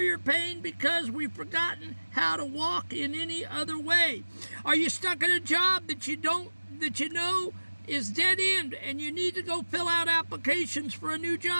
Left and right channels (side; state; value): both; inverted; correlation -1.00